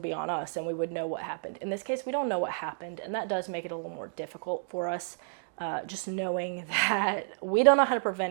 be on us and we would know what happened. In this case, we don't know what happened, and that does make it a little more difficult for us, just knowing that we don't know how to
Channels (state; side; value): silent; left; digital silence